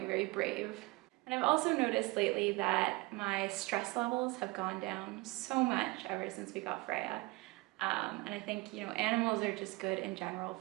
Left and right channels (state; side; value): quieter; left; 23.8 dB